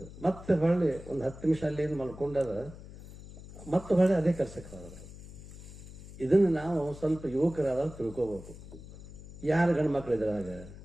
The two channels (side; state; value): left; noise; hum, 15 dB below the sound